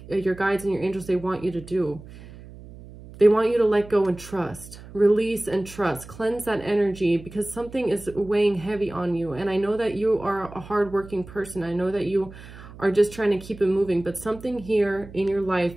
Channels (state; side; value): noise; right; hum, 17 dB below the sound